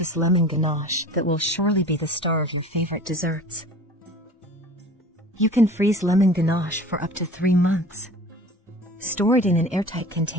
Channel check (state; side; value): normal; both; correlation 0.42